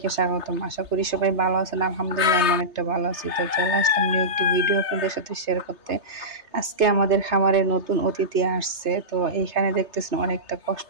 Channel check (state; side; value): late; left; 3.3 ms